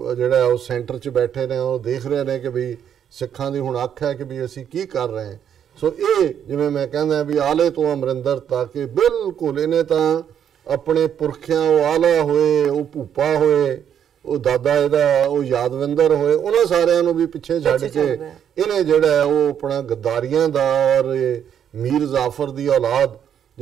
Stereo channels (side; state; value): left; quieter; 8.9 dB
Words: ਜਿਹੜਾ ਉਹ ਸੈਂਟਰ 'ਚ ਬੈਠੇ ਨੇ ਉਹ ਦੇਖ ਰਹੇ ਨੇ ਕਿ ਵੀ ਸਿੱਖਾਂ ਦੀ ਹੁਣ ਅੱਖ ਹੈ ਕਿ ਵੀ ਅਸੀਂ ਕੀ ਕਰ ਰਹੇ ਹਾਂ। ਸੋ ਇਹ ਜਿਵੇਂ ਮੈਂ ਕਹਿੰਦਾ ਵੀ ਆਲੇ ਤੋਂ ਅਮਰਿੰਦਰ ਤੱਕ ਬਿਲਕੁਲ ਇਹਨੇ ਤਾਂ ਆਪਣੇ ਪੁਰਖਿਆਂ ਉਹ ਆਲਾ ਹੋਏ, ਉਹ ਭੂਪਾ ਹੋਏ, ਉਹ ਦਾਦਾ ਇਹਦਾ ਉਹ ਯਾਦਵਿੰਦਰ ਹੋਏ, ਉਹਨਾਂ ਸਾਰਿਆਂ ਨੂੰ ਵੀ ਪਿੱਛੇ ਛੱਡ ਕੇ ਇਹਨੇ ਜਿਹੜਾ ਉਹ ਆਪਣਾ ਗੱਦਾਰੀਆਂ ਦਾ ਔਰ ਮੀਰ ਜ਼ਾਫਰ ਦੀ ਔਲਾਦ